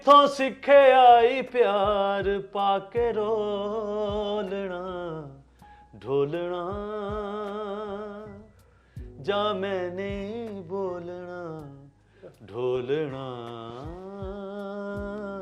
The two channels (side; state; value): both; identical; correlation 1.00